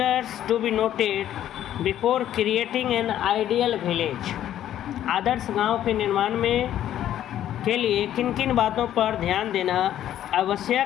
to be noted before creating an ideal village? आदर्श गांव के निर्माण में के लिए किन किन बातों पर ध्यान देना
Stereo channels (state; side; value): quieter; right; 11.6 dB